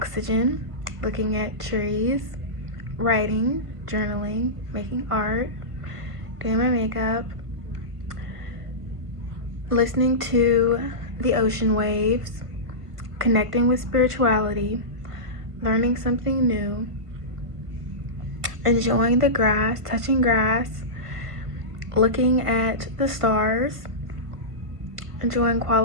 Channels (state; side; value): late; left; 1.5 ms